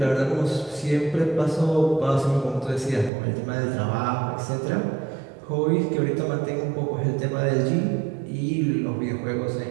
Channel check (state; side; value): drops out; left; at 3.1 s